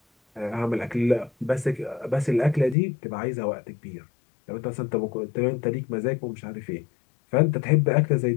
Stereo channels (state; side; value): drops out; right; at 2.8 s